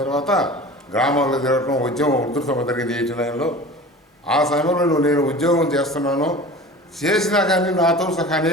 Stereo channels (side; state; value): both; normal; correlation 0.38